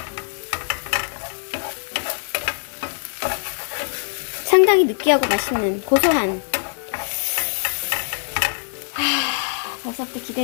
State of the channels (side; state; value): right; silent; digital silence